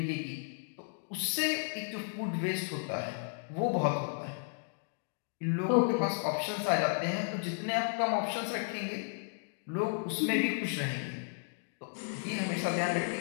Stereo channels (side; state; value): right; silent; digital silence